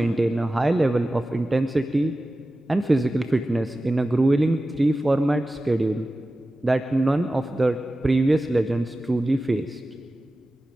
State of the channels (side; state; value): both; normal; correlation 0.95